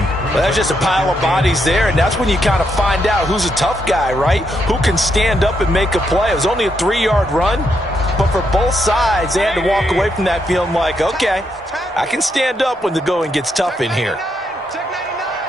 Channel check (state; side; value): normal; both; correlation 0.79